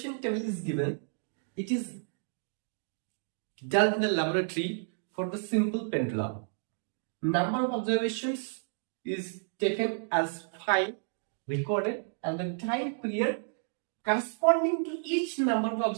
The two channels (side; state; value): left; silent; digital silence